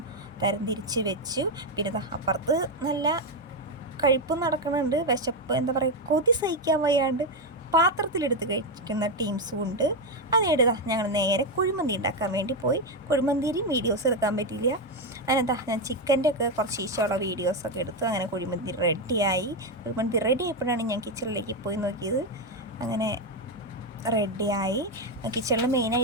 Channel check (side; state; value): both; normal; correlation 0.07